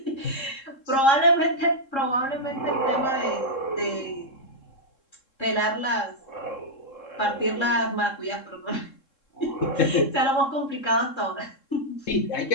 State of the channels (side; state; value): right; late; 3.7 ms